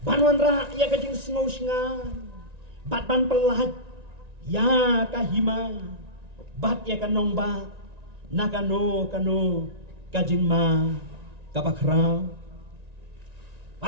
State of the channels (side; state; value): left; late; 1.9 ms